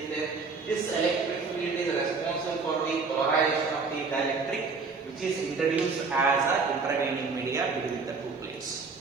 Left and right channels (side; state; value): left; quieter; 4.5 dB